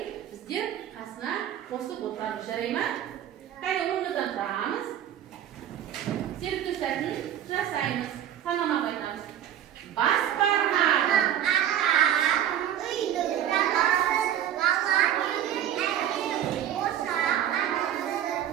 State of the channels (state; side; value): quieter; left; 10.7 dB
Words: біздер қасына қосып отырамыз. Жарай ма? Қайда орнымыздан тұрамыз. Серікті сәтін жасаймыз. Санамақ айтамыз. Бас бармақ.